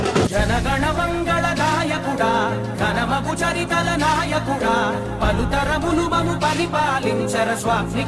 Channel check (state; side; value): identical; both; correlation 1.00